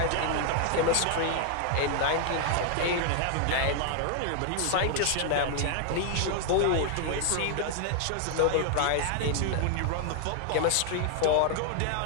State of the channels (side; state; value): both; different; correlation 0.00